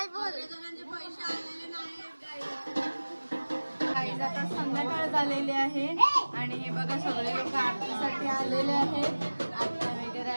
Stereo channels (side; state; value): both; inverted; correlation -1.00